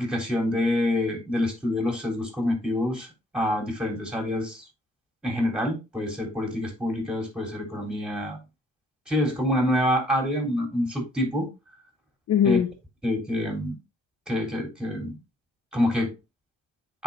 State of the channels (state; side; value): normal; both; correlation 0.65